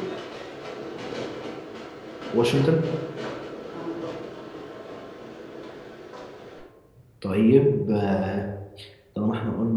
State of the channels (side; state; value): both; identical; correlation 1.00